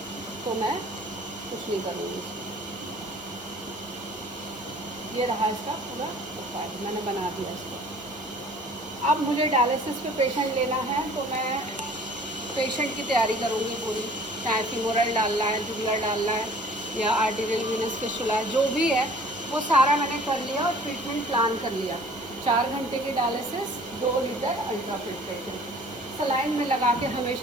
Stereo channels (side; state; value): both; normal; correlation 0.50